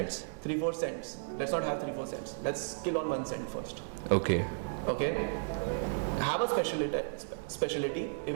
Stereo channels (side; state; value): left; silent; digital silence